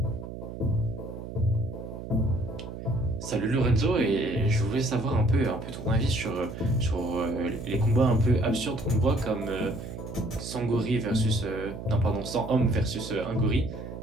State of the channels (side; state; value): right; noise; hum, 10 dB below the sound